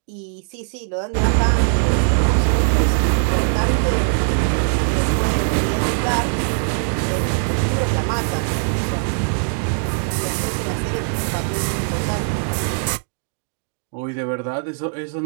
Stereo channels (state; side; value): silent; left; digital silence